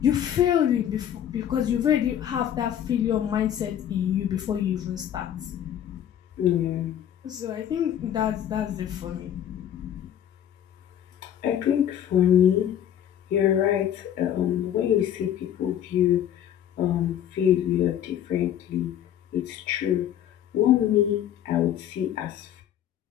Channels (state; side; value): quieter; right; 10.4 dB